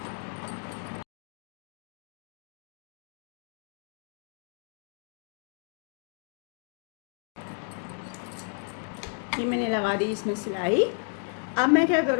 ये मैंने लगा दी इसमें सिलाई। अब मैं क्या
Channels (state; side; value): silent; right; 56 dB below the other